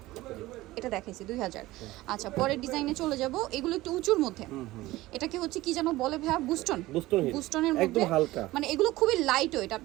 এটা দেখাইছি 2000। আচ্ছা, পরের ডিজাইনে চলে যাব। এগুলো একটু উঁচুর মধ্যে। এটাকে হচ্ছে কি যেন বলে ভাইয়া? বুস্টন। বুস্টন হিল, বুস্টনের একদম মধ্যে হালকা। মানে এগুলো খুবই লাইট ওয়েট।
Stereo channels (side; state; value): left; quieter; 17.9 dB